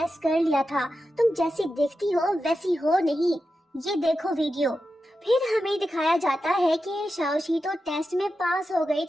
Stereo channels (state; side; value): normal; both; correlation 0.90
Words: कर लिया था, तुम जैसी दिखती हो वैसी हो नहीं। ये देखो वीडियो। फिर हमें दिखाया जाता है कि शाओशी तो टेस्ट में पास हो गई